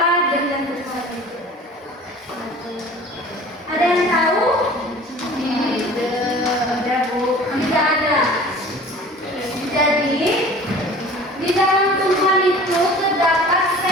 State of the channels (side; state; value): both; normal; correlation 0.43